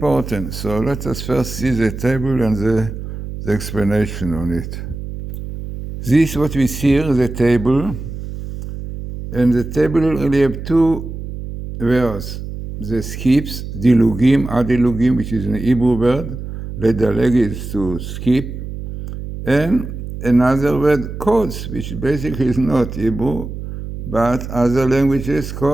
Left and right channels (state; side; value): noise; right; hum, 8 dB below the sound